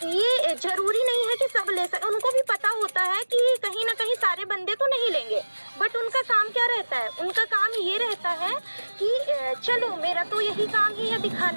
ये जरूरी नहीं है कि सब ले सके। उनको भी पता होता है कि कहीं ना कहीं सारे बंदे तो नहीं लेंगे, बट उनका काम क्या रहता है, उनका काम ये रहता है कि चलो मेरा तो यही काम ही है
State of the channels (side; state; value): both; inverted; correlation -1.00